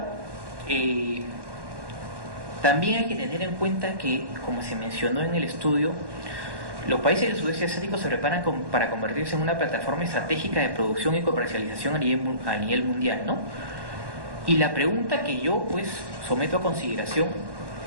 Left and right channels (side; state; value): left; late; 1.1 ms